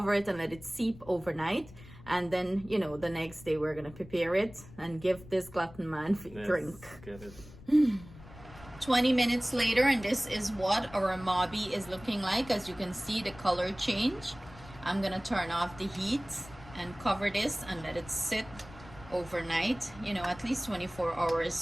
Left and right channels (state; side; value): noise; left; rumble, 18 dB below the sound